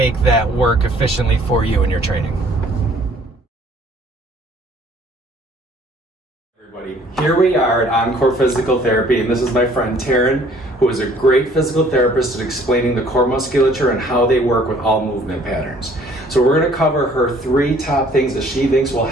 that work efficiently for you in your training. Here we are at Encore Physical Therapy, and this is my friend Taryn, who is a great physical therapist at explaining the core musculature and how they work with all movement patterns. So we're going to cover her 3 top things that she thinks will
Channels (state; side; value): normal; both; correlation 0.58